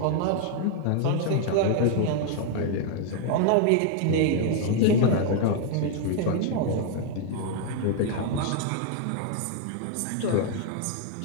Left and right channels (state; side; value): different; both; correlation 0.00